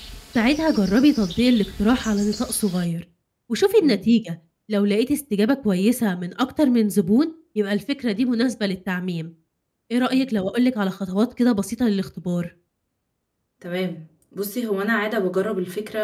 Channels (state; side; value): identical; both; correlation 1.00